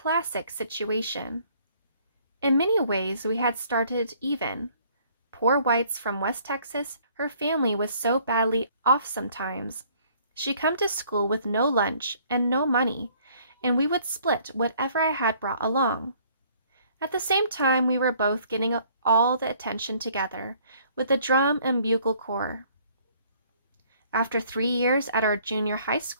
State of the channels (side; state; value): both; inverted; correlation -0.60